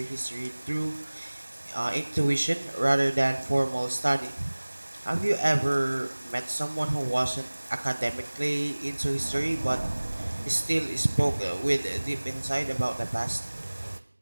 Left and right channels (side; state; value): both; inverted; correlation -1.00